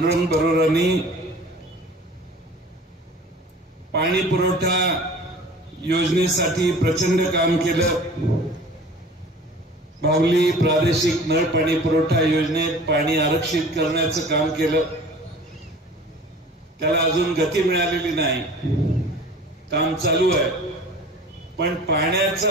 बरोरांनी पाणी पुरवठा योजनेसाठी प्रचंड काम केलं. बावली प्रादेशिक नळ पाणी पुरवठा योजनेत पाणी आरक्षित करण्याचं काम केलं. त्याला अजून गती मिळालेली नाही, काम चालू आहे. पण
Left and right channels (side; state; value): both; normal; correlation 0.44